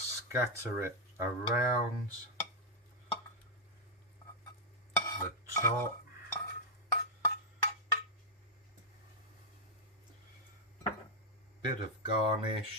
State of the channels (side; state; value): both; normal; correlation -0.03